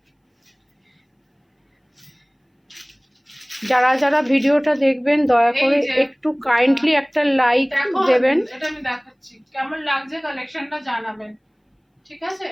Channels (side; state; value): both; identical; correlation 1.00